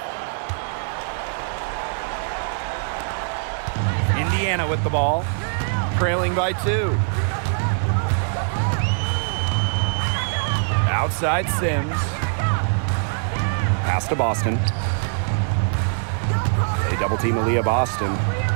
Indiana with the ball, trailing by 2. Outside Sims. Pass to Boston. They double team Aaliyah Boston.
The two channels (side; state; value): left; silent; digital silence